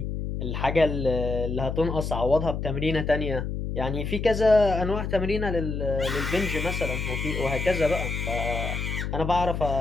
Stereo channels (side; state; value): left; noise; hum, 3 dB below the sound